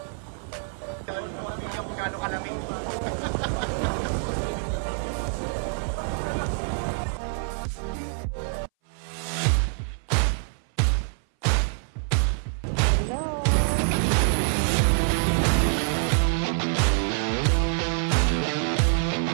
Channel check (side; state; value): left; silent; 59 dB below the other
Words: Hindi ako gano'ng kalamig.